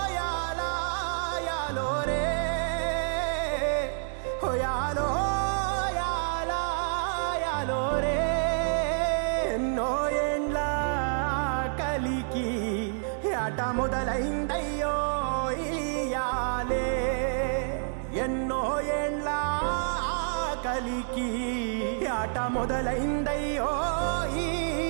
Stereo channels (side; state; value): left; silent; digital silence